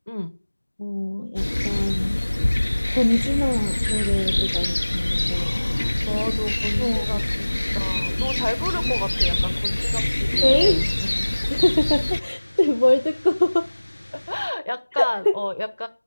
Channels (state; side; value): inverted; both; correlation -1.00